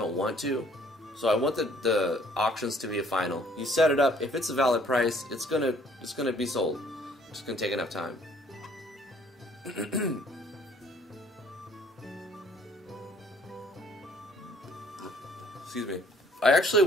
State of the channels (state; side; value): normal; both; correlation 0.60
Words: want to. So I want the auctions to be a final. You set it up. If it's a valid price, it's gonna be sold. It's just gonna take enough time. Excuse me. I actually